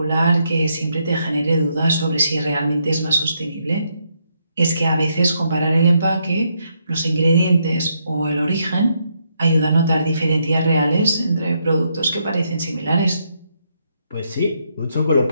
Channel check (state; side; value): inverted; both; correlation -0.77